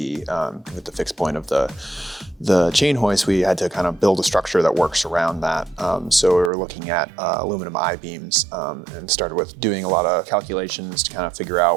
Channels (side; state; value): left; drops out; at 6.5 s